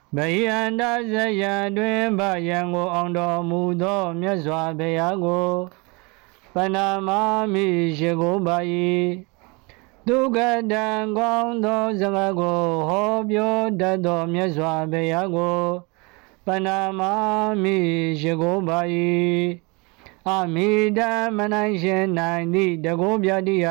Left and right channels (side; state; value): left; quieter; 28.3 dB